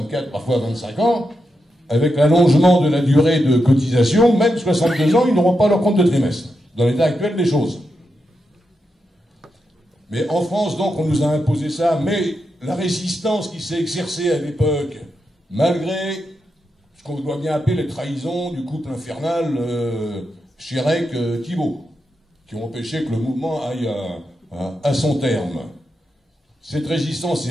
24, parfois 25 ans, avec l'allongement de la durée de cotisation, même 62 ans, ils n'auront pas leur compte de trimestre, dans l'état actuel des choses. Mais en France, donc, on nous a imposé ça, mais la résistance qui s'est exercée à l'époque, malgré ce qu'on doit bien appeler les trahisons du couple infernal Chirac-Thibault, qui ont empêché que le mouvement aille à son terme. Cette résistance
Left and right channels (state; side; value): normal; both; correlation 0.86